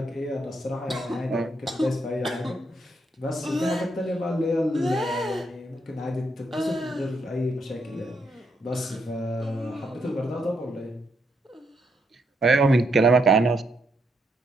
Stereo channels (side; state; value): both; normal; correlation 0.78